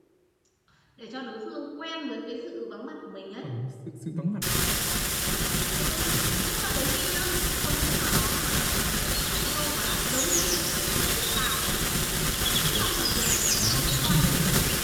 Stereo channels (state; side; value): identical; both; correlation 1.00